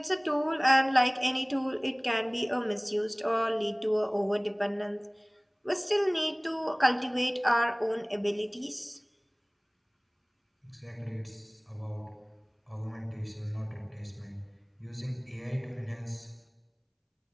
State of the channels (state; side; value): identical; both; correlation 1.00